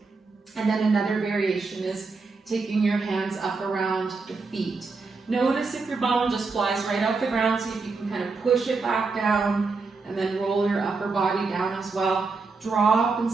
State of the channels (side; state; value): left; quieter; 4.2 dB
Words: And then another variation is taking your hands up around the feet. Notice if your bum just flies right off the ground, see if you can kind of push it back down and then roll your upper body down as well. Drop and